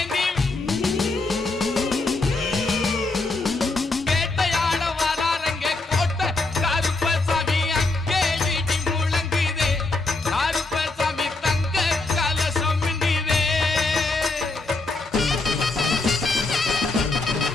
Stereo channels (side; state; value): right; quieter; 3.3 dB